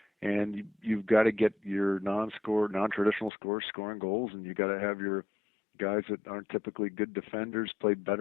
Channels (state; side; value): drops out; right; at 3.3 s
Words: and you've got to get your non-traditional scorers scoring goals, and you got to have your guys that aren't typically good defenders play